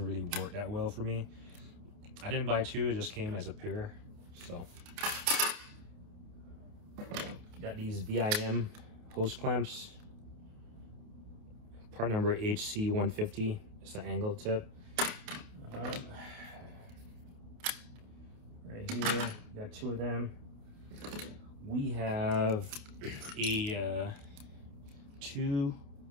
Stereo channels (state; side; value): late; left; 28 ms